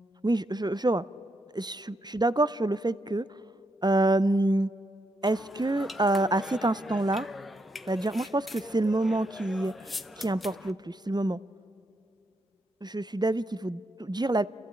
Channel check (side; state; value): both; normal; correlation 0.79